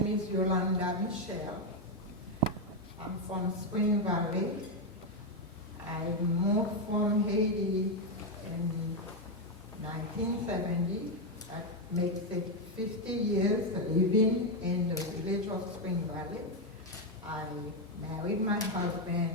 is Yolanda Michelle. I'm from Spring Valley. I moved from Haiti in 1970. That makes it 50 years living in the village of Spring Valley. I married my husband,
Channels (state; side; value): normal; both; correlation 0.04